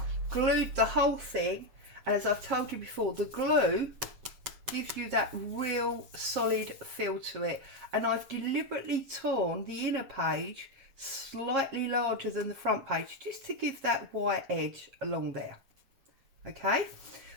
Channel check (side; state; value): left; late; 7.2 ms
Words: glued the whole thing, and as I've told you before, the glue gives you that real solid feel to it. And I've deliberately torn the inner page slightly larger than the front page, just to give that white edge along there. Okay,